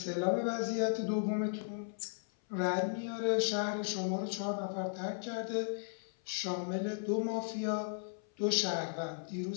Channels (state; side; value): silent; right; 54 dB below the other